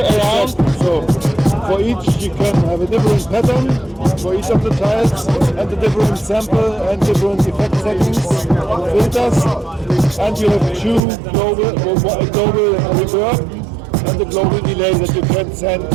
around. So for each you can have a different pattern for each of the tiles, and a different sample and different effect settings and filters. And you have two global reverb and a global delay that you can send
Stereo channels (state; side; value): drops out; left; at 11.0 s